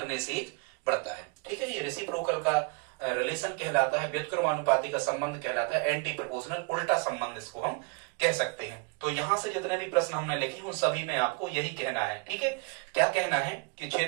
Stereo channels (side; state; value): left; quieter; 33.1 dB